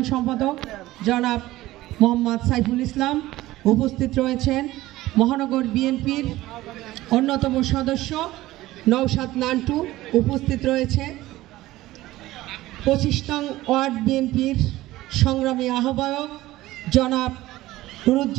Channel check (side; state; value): left; quieter; 16.8 dB